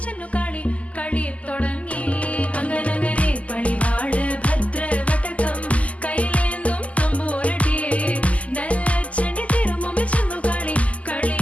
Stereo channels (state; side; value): late; right; 0.068 ms